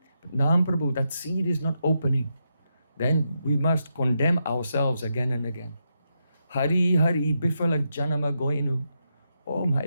but Nam Prabhu, that seed is not opening, then we must condemn ourselves again and again. Hari Hari Bifala Janama Goinu. Oh my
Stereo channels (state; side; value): inverted; both; correlation -0.83